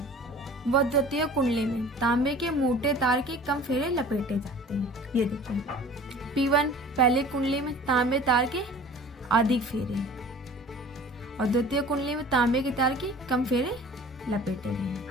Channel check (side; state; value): both; normal; correlation 0.44